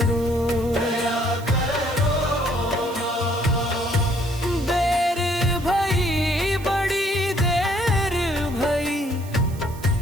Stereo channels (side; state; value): right; noise; hiss, 20 dB below the sound